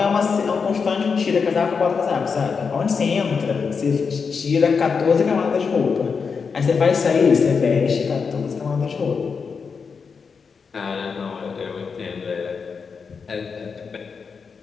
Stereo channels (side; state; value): right; quieter; 5.5 dB